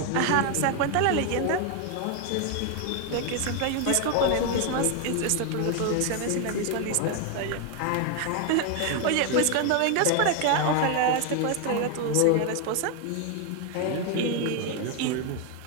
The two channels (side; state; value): both; different; correlation 0.01